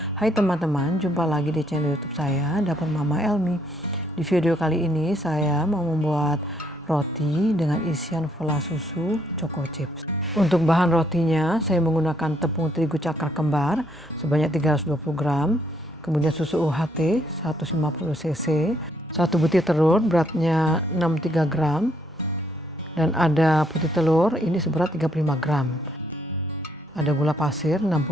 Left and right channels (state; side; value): normal; both; correlation 0.71